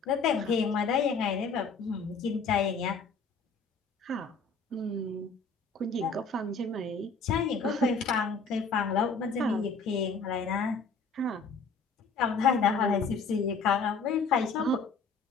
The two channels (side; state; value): right; quieter; 4.6 dB